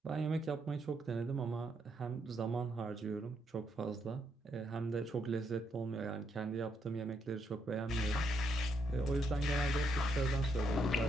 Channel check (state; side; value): normal; both; correlation 0.77